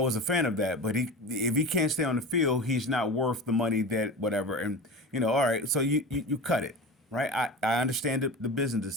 a fan of that, but if he can't stay on the field, he's not worth the money that whatever. And all right, so you cut it, right? I understand the business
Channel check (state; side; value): normal; both; correlation 0.31